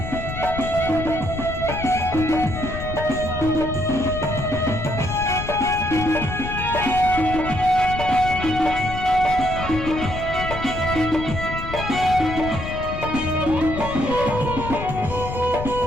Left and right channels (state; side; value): noise; left; rumble, 7 dB below the sound